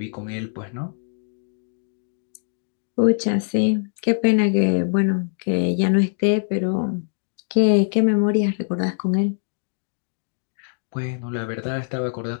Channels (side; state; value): right; silent; digital silence